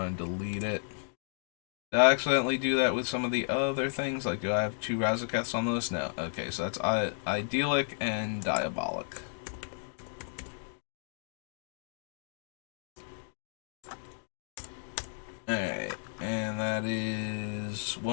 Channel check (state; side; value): silent; right; digital silence